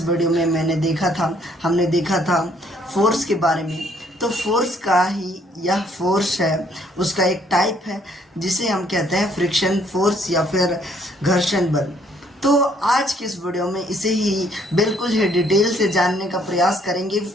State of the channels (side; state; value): both; normal; correlation 0.65